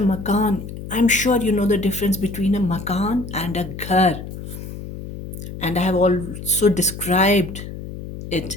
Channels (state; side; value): noise; left; hum, 10 dB below the sound